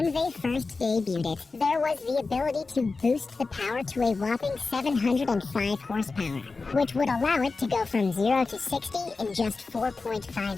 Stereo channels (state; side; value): quieter; right; 4.0 dB